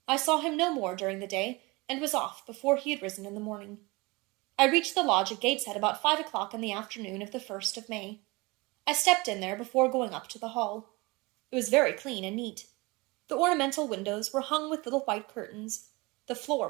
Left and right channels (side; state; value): left; quieter; 24.5 dB